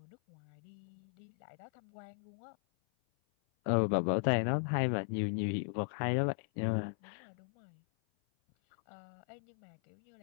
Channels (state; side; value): silent; right; 53 dB below the other